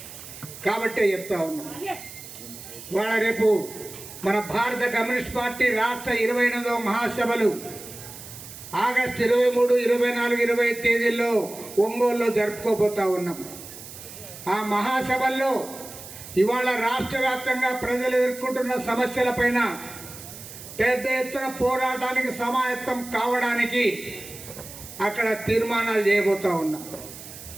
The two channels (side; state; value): right; noise; hiss, 14 dB below the sound